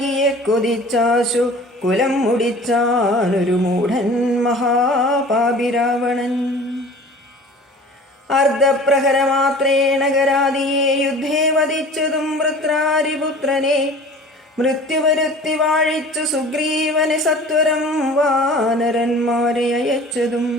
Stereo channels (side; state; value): both; normal; correlation 0.44